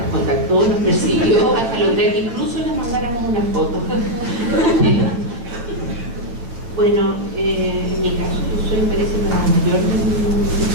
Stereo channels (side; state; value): left; late; 8.6 ms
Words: contactó, nos persiguió hasta lograr que incluso le mandáramos una foto. Bueno, en mi caso, yo soy, parece, la mayor de mi